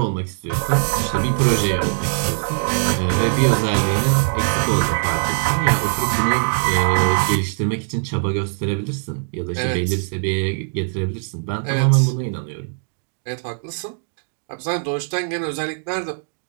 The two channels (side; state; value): left; silent; digital silence